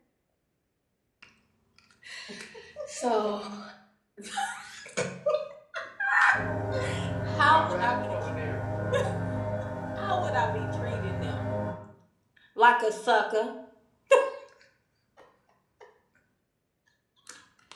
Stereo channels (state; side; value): identical; both; correlation 1.00